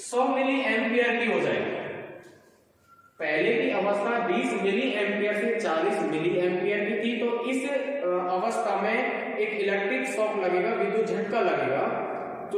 मिली एम्पियर की हो जाएगी। पहले की अवस्था 20 मिली एम्पियर से 40 मिली एम्पियर की थी, तो इस अवस्था में एक इलेक्ट्रिक शॉक लगेगा, विद्युत झटका लगेगा,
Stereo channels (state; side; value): identical; both; correlation 1.00